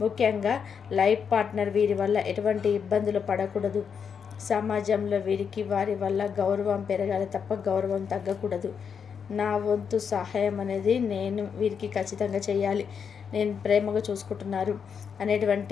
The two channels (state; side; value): quieter; right; 6.8 dB